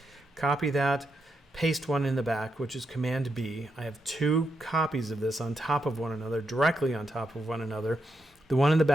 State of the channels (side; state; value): both; normal; correlation 0.84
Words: Copy that, paste one in the back, which is Command B. I have two copies of this on top of one another, directly on top of one another. The one in the